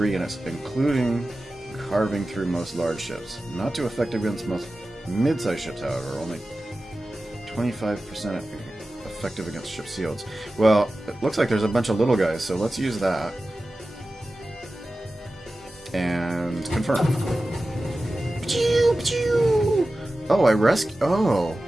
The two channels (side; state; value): both; normal; correlation 0.95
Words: in it, including carving through most large ships. Not too effective against most mid-sized ships, however, only 25% effective against ship shields. Well, it looks like there's a bunch of little guys, so let's use that. And confirm. Oh,